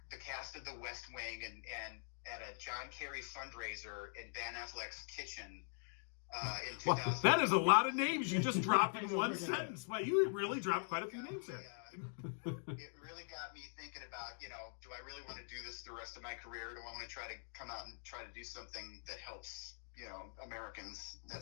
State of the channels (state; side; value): silent; right; digital silence